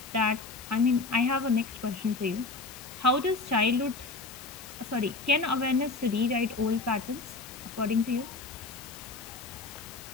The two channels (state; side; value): quieter; right; 3.8 dB